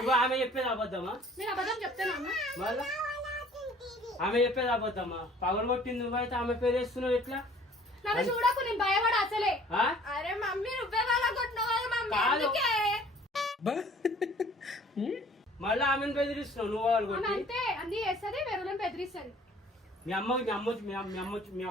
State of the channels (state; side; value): normal; both; correlation 0.53